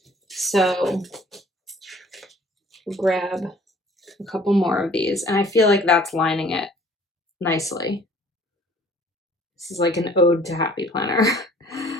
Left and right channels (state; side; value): normal; both; correlation 0.54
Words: So grab a couple more of these, and I feel like that's lining it nicely. This is like an ode to Happy Planner,